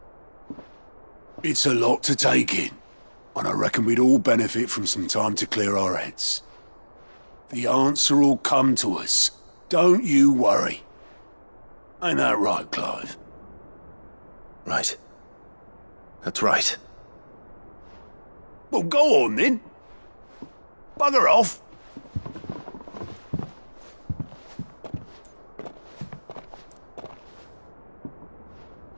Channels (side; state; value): both; inverted; correlation -1.00